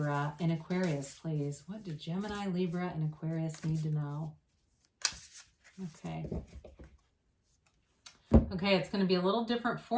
and Aquarius, please? What do Gemini, Libra, and Aquarius need to know? Okay. Okay, it's going to be a little different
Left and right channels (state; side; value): identical; both; correlation 1.00